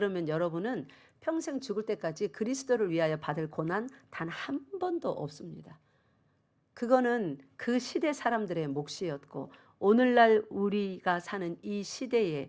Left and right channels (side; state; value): both; identical; correlation 1.00